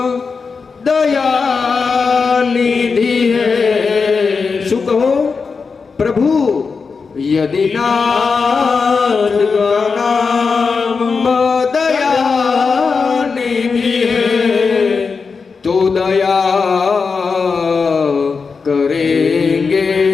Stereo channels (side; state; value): right; quieter; 5.0 dB